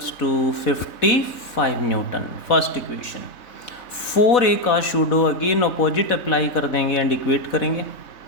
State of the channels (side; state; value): right; late; 3.7 ms